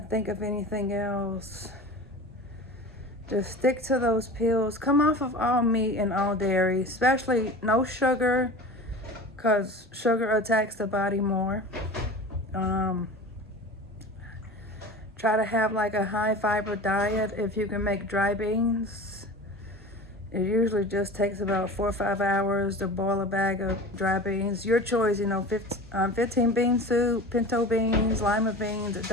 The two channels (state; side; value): normal; both; correlation 0.34